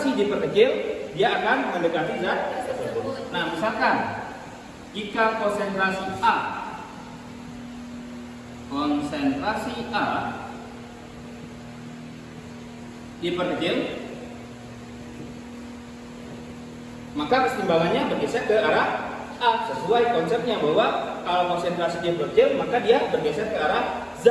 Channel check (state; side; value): identical; both; correlation 1.00